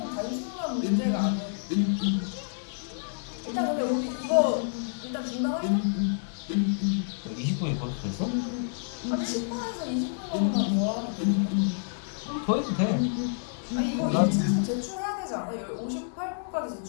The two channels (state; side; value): silent; right; digital silence